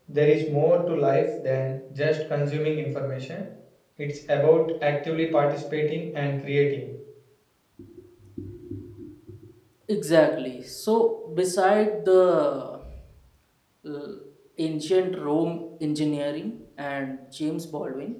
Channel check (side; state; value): both; identical; correlation 1.00